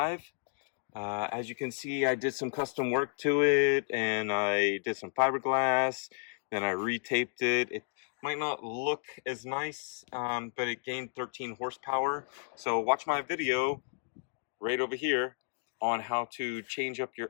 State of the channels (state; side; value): silent; right; digital silence